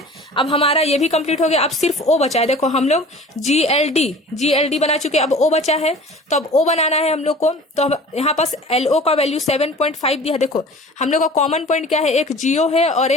अब हमारा ये भी कंप्लीट हो गया। अब सिर्फ O बचा है। देखो हम लोग GLD बना चुके, अब O बचा है। तो अब O बनाना है हम लोग को। तो यहाँ पास LO का वैल्यू 7.5 दिया। देखो हम लोग का कॉमन पॉइंट क्या है? एक GO है और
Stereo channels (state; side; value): normal; both; correlation 0.43